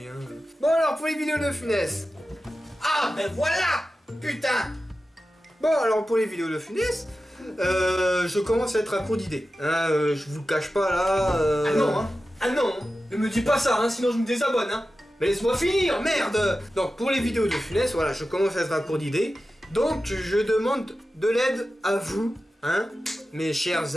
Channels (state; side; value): normal; both; correlation 0.93